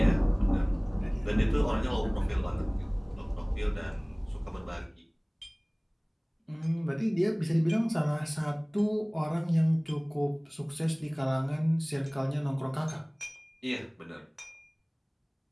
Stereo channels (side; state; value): both; identical; correlation 1.00